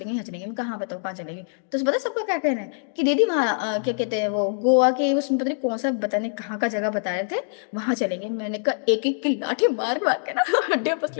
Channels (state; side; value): silent; right; digital silence